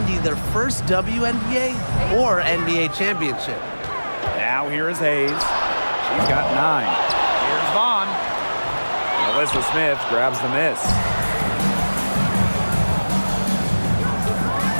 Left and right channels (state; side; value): inverted; both; correlation -1.00